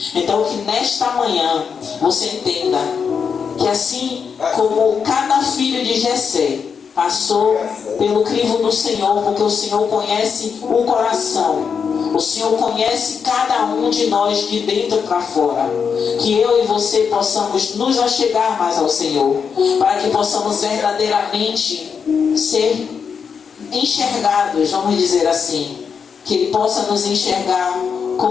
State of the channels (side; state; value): right; quieter; 6.4 dB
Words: Então que nesta manhã você entenda que assim como cada filho de Jessé passou pelo crivo do Senhor, porque o Senhor conhece o coração, o Senhor conhece cada um de nós de dentro para fora, que eu e você possamos nos achegar mais ao Senhor, para que possamos verdadeiramente ser enxergados, vamos dizer assim, que Ele possa nos enxergar